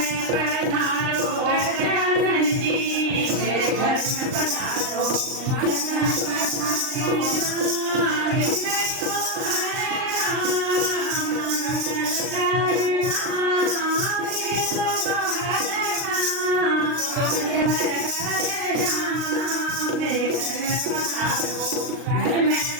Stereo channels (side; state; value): left; late; 38 ms